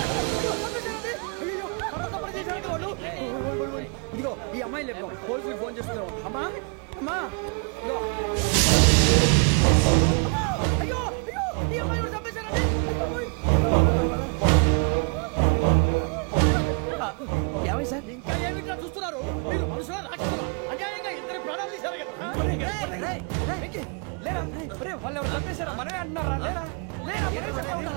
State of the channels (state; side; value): quieter; left; 34.7 dB